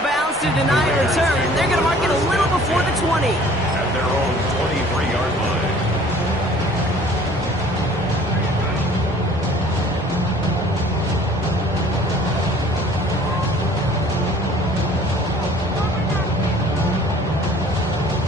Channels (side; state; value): both; normal; correlation 0.52